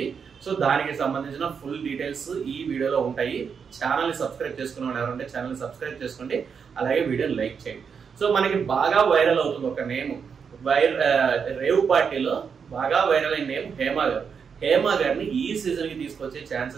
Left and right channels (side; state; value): left; quieter; 6.4 dB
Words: సో దానికి సంబంధించిన ఫుల్ డీటెయిల్స్ ఈ వీడియోలో ఉంటాయి. ఛానల్ ని సబ్స్క్రైబ్ చేసుకున్న వాళ్ళు ఎవరంటే ఛానల్ ని సబ్స్క్రైబ్ చేసుకోండి, అలాగే వీడియోని లైక్ చేయండి. సో మనకి బాగా వైరల్ అవుతుంది ఒక నేమ్, రేవ్ పార్టీలో బాగా వైరల్ అయిన నేమ్ హేమ గారు. హేమ గారిని ఈ సీజన్ కి తీసుకొచ్చే